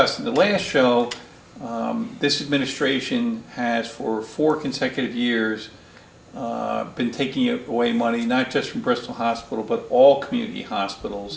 in the last show, this administration has for 4 consecutive years been taking away money, not just from Bristol Hospital, but all community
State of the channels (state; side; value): identical; both; correlation 1.00